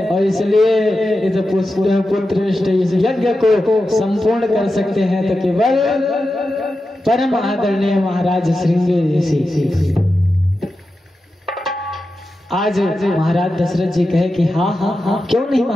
और इसलिए इस पुत्रेष्ठ इस यज्ञ को संपूर्ण कर सकते हैं तो केवल परम आदरणीय महाराज श्रृंगी ऋषि। आज महाराज दशरथ जी कहे कि हाँ क्यों नहीं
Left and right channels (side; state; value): both; normal; correlation 0.91